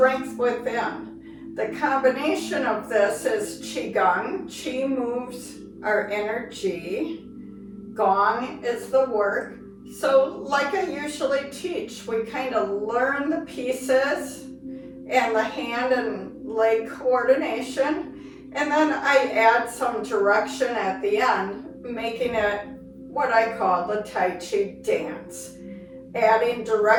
within. The combination of this is Qigong. Qi moves our energy. Gong is the work. So like I usually teach, we kind of learn the pieces and the hand and leg coordination, and then I add some direction at the end, making it what I call the Tai Chi dance, adding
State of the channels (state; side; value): identical; both; correlation 1.00